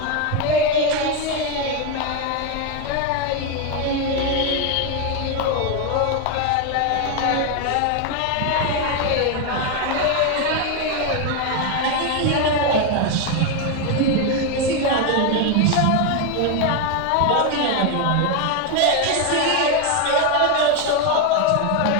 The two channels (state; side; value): different; both; correlation 0.01